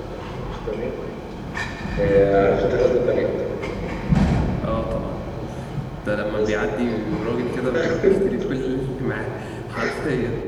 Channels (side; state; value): both; identical; correlation 1.00